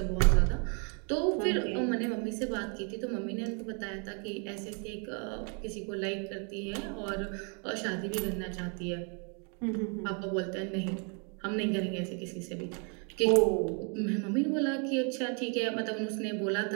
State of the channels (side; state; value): left; quieter; 37.7 dB